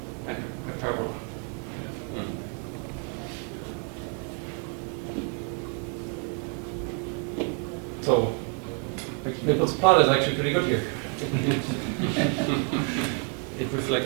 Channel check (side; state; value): left; quieter; 38.0 dB